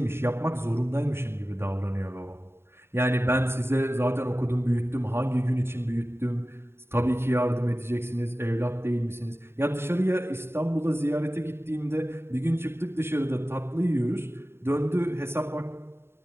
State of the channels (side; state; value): left; late; 0.12 ms